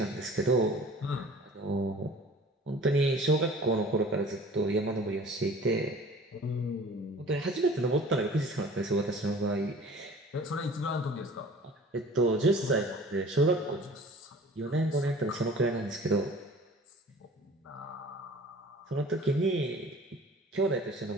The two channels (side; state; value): both; normal; correlation 0.46